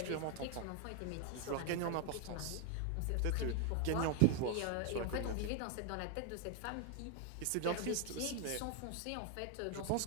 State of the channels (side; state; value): both; different; correlation 0.01